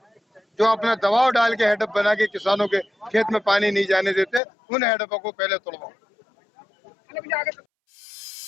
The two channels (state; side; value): drops out; right; at 4.4 s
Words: जो अपना दबाव डाल के हेडअप बना के किसानों के खेत में पानी नहीं जाने देते, उन हेडअपों को पहले तोड़वाऊंगा।